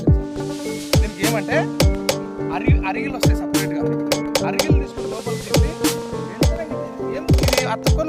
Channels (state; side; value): identical; both; correlation 1.00